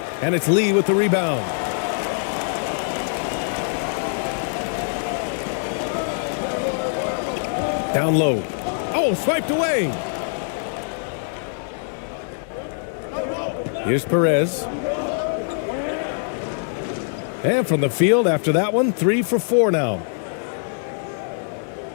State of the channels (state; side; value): silent; right; 63 dB below the other